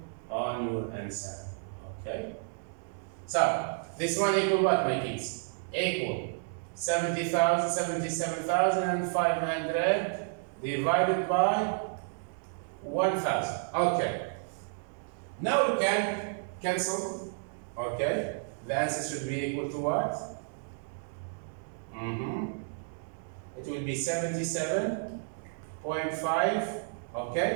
on your answer. Okay? So, this one equal what, my kids? Equal 77,500 divided by 1,000. Okay. Now we can cancel. Okay. The answer should be equal to what? It will be 77.5.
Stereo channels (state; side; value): silent; left; digital silence